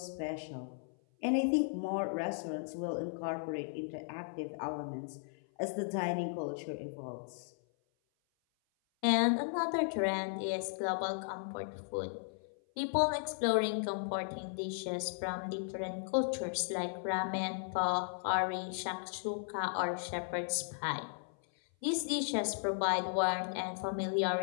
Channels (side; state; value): right; silent; 54 dB below the other